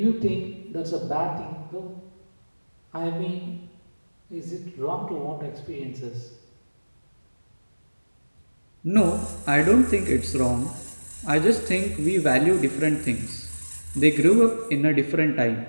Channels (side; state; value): both; inverted; correlation -1.00